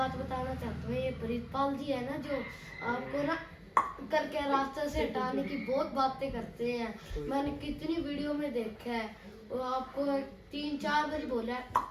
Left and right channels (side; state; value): both; identical; correlation 1.00